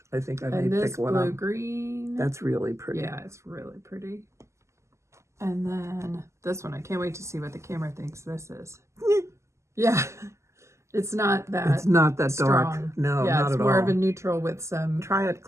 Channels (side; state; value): left; late; 0.13 ms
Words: I think I may pick one up. And this blue-green. That's really pretty. Yeah, it's really pretty. And then this one, I can't wait to see what the camera thinks this is. Yeah, it's not that It's not that strong. dark. No, yeah, not it's at more all. of a neutral with some... Try it